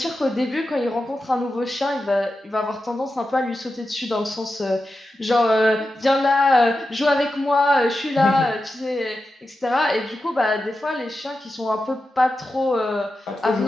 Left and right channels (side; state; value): both; normal; correlation 0.91